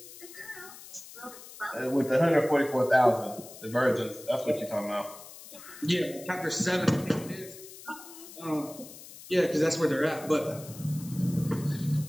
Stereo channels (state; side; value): noise; left; hiss, 16 dB below the sound